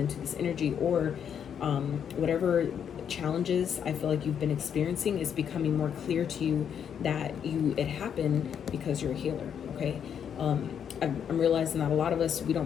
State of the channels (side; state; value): right; quieter; 8.2 dB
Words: this energy, or whatever challenges I feel like you've been experiencing is becoming more clear to you that it happened because you're a healer, okay? I'm realizing that a lot of us, we